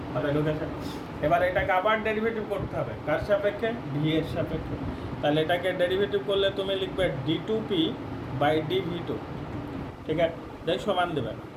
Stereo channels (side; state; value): both; identical; correlation 1.00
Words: মাথায় ঢুকেছে? এবার এটাকে আবার ডেরিভেটিভ করতে হবে, কার সাপেক্ষে ভি এর সাপেক্ষে, তাহলে এটাকে ডেরিভেটিভ করলে তুমি লিখবে d2p বাই dv2, ঠিক আছে? দেখ সমান দেবে,